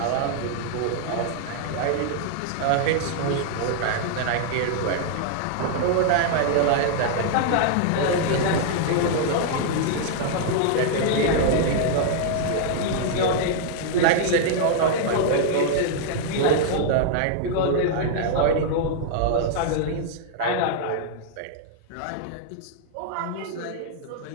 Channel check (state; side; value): different; both; correlation -0.01